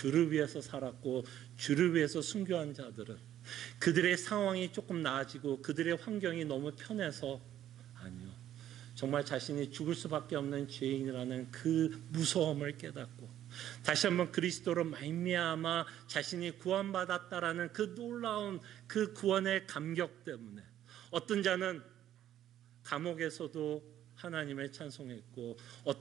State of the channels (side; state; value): left; quieter; 11.6 dB